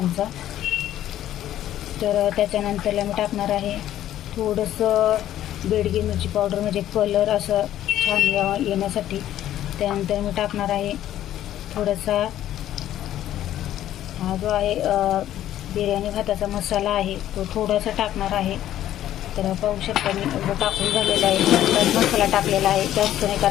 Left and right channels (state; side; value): quieter; right; 12.4 dB